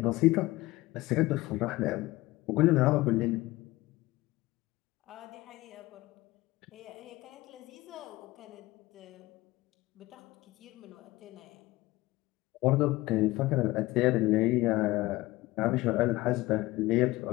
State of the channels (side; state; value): right; quieter; 19.3 dB